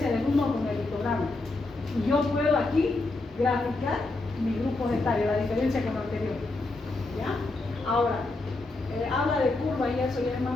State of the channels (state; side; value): quieter; right; 3.2 dB